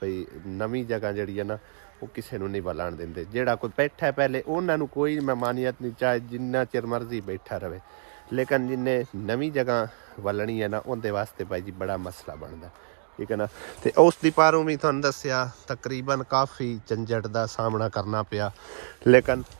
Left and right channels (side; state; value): left; silent; digital silence